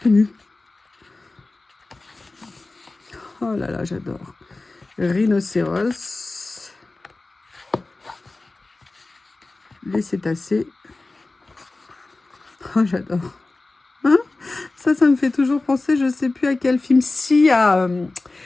Oh là là, j'adore. Rhinocéros. Les cétacés. Oh, j'adore. Hein, ça me fait toujours penser, je sais plus à quel film. Si, à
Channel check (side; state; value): right; quieter; 3.2 dB